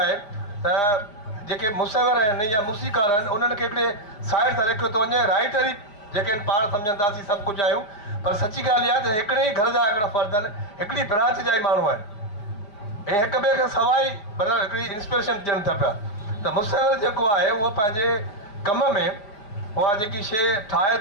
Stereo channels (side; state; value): right; late; 5.0 ms